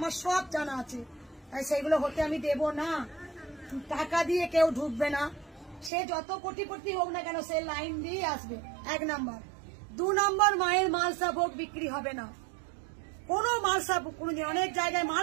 সব জানা আছে, তাই সেগুলো হতে আমি দেব না। টাকা দিয়ে কেউ ঢুকবে না, সে যত কোটিপতি হোক না কেন সে লাইন দিয়ে আসবে, 1 নম্বর। 2 নম্বর, মায়ের মালসা ভোগ বিক্রি হবে না, কোনো মালসা, অনেক জায়গায়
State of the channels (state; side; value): drops out; left; at 5.9 s